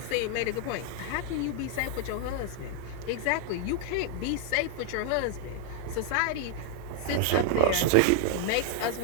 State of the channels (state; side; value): different; both; correlation 0.00